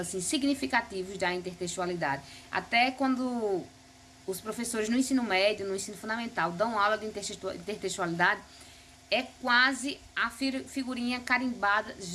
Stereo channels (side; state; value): both; identical; correlation 1.00